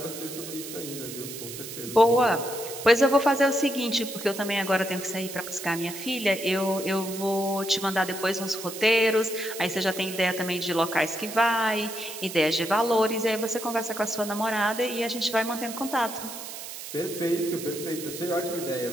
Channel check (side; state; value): right; noise; hiss, 10 dB below the sound